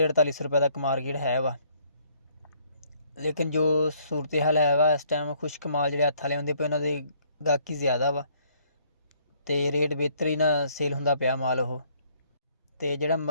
ਰੁਪਏ ਤੱਕ ਮਾਰਕੀਟ ਹੈ ਵਾ। ਲੇਕਿਨ ਜੋ ਸੂਰਤ ਹਾਲ ਹੈ ਵਾ ਇਸ ਟਾਈਮ ਖੁਸ਼ਕ ਮਾਲ ਜਿਹੜੇ ਹੱਥ ਵਾਲੇ ਹੁੰਦੇ ਪਏ ਉਹਨਾਂ ਦੇ ਗਾਹਕੀ ਜ਼ਿਆਦਾ ਵਾ ਅਤੇ ਰੇਟ ਬਿਹਤਰ ਹੀ ਨਾ ਸੇਲ ਹੁੰਦਾ ਪਿਆ ਮਾਲ ਉਹ। ਅਤੇ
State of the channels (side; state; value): both; inverted; correlation -0.64